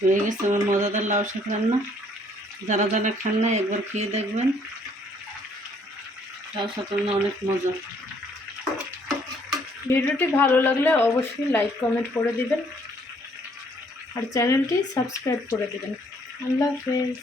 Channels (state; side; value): normal; both; correlation 0.64